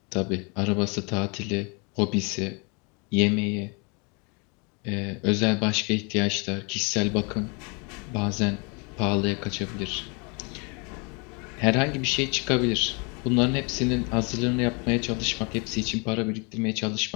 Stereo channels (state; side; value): quieter; right; 32.4 dB